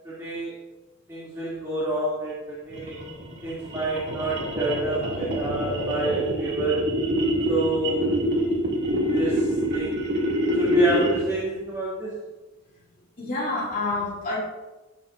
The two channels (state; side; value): normal; both; correlation 0.33